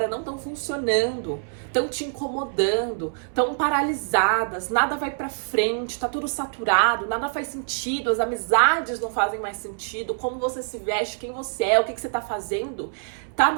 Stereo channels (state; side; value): silent; left; 62 dB below the other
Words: não estão funcionando, estão te incomodando, estão paralisadas, nada vai pra frente, tá tudo saturado, nada faz sentido, as amizades não fazem mais sentido, como você se veste, quem você é, o que você tá fazendo, tá